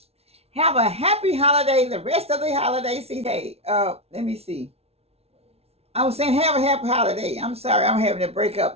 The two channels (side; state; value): left; late; 0.30 ms